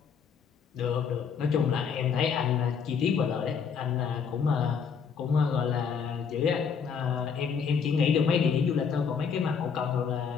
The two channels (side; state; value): right; quieter; 6.4 dB